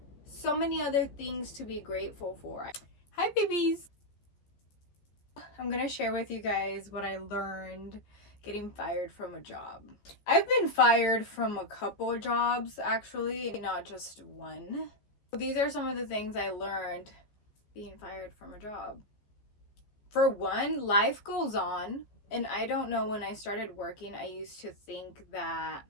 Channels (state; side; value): late; right; 14 ms